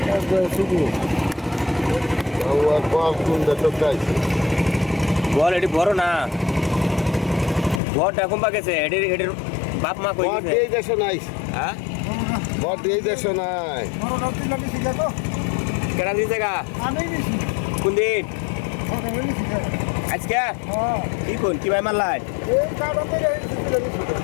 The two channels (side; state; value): right; drops out; at 7.8 s